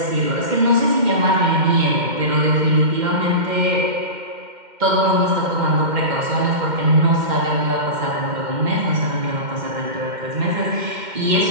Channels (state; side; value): late; left; 2.1 ms